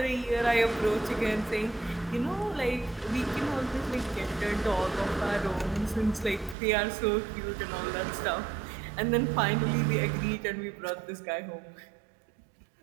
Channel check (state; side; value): drops out; left; at 6.6 s